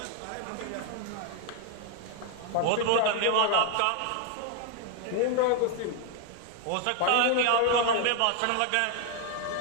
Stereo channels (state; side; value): different; both; correlation 0.00